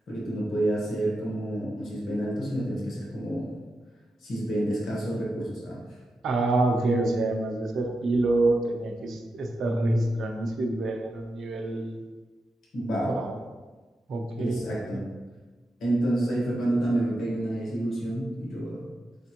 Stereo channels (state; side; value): normal; both; correlation 0.88